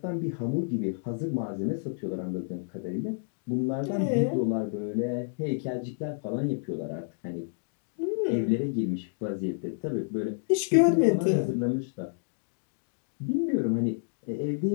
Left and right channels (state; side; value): silent; right; digital silence